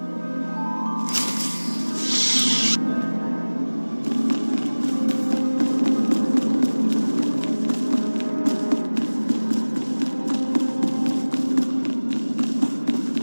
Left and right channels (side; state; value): both; inverted; correlation -1.00